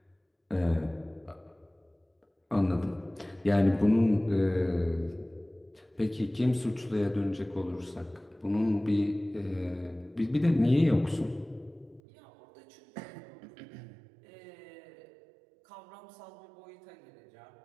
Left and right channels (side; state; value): left; drops out; at 12.0 s